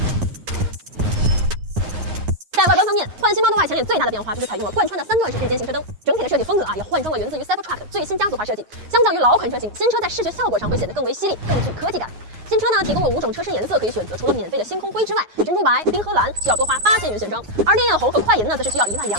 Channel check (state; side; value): late; left; 9.5 ms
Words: 在外观方面，焕新 Model Y 前脸最大的变化就是采用了贯穿的3段式电间型车灯，整体的设计风格也换装了源自于 Cybertruck 的最新家族化设计。相较于老款车型，新车在视觉效果上会显得更为犀利，更具科技感。新车呢提供了5种车身颜色可以选择，除了免费的星空灰之外，珍珠白、冰河蓝需要多花8000元选装，而烈焰红和快银呢则是需要